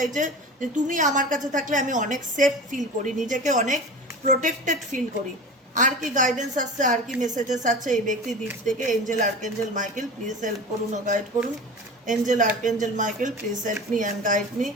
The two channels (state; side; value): normal; both; correlation 0.34